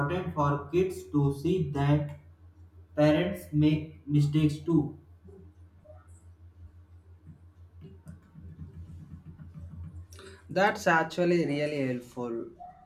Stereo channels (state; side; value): identical; both; correlation 1.00